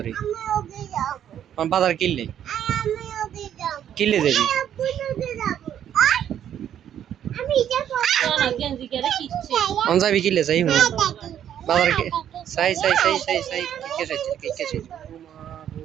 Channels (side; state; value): left; quieter; 10.0 dB